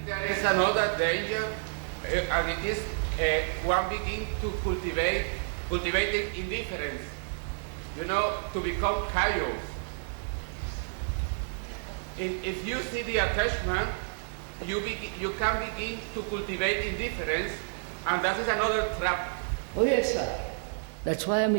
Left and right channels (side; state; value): left; silent; digital silence